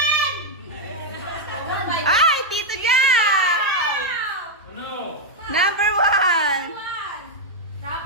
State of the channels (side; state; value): both; normal; correlation -0.01